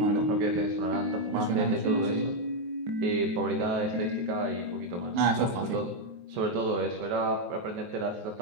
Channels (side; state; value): left; late; 23 ms